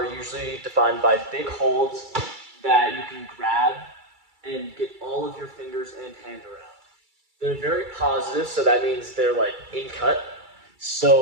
usually defined by big holds that you can grab and get all of your fingers and hand around. They're very positive, so that means they're like in cut.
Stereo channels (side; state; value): left; late; 2.3 ms